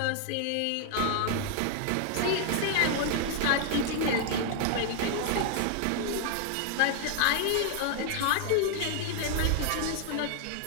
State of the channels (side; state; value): both; different; correlation 0.00